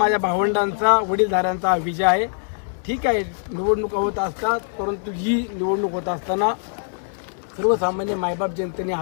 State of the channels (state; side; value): silent; right; digital silence